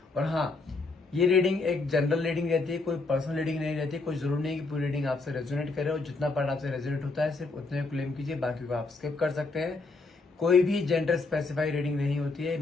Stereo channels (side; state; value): right; quieter; 3.6 dB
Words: और हाँ, ये रीडिंग एक जनरल रीडिंग रहती है, कोई पर्सनल रीडिंग नहीं रहती। कोई जरूर नहीं कि पूरी रीडिंग आपसे रेजोनेट करे, और जितना पार्ट आपसे रेजोनेट होता है सिर्फ उतने क्लेम कीजिए, बाकी को आप स्किप कर सकते हैं। कोई भी जेंडर स्पेसिफाई रीडिंग नहीं होती है।